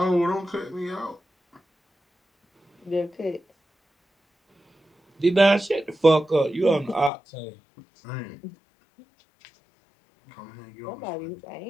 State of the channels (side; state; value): right; drops out; at 7.1 s